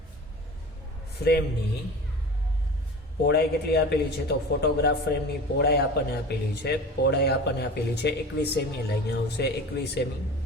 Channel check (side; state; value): both; normal; correlation 0.36